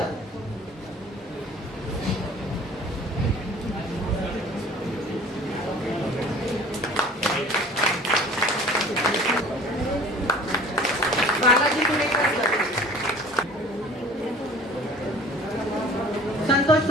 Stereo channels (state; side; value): normal; both; correlation 0.46